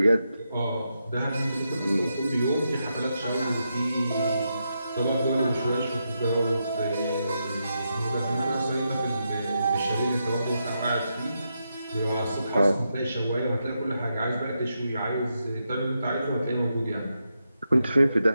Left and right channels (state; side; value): inverted; both; correlation -0.84